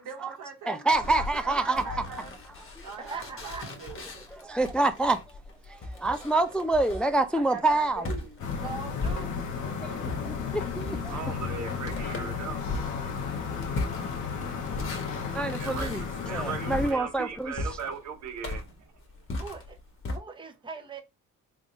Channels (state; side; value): normal; both; correlation 0.64